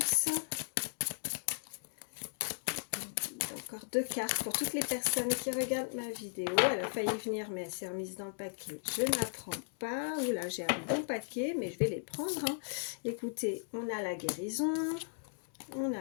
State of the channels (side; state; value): right; silent; digital silence